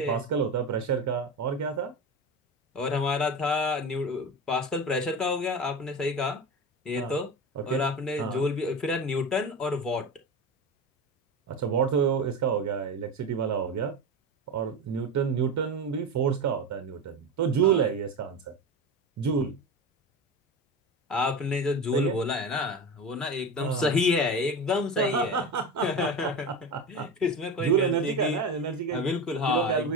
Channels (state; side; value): normal; both; correlation 0.24